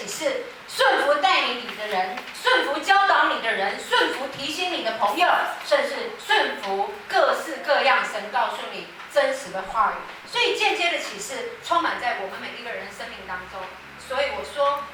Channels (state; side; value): identical; both; correlation 1.00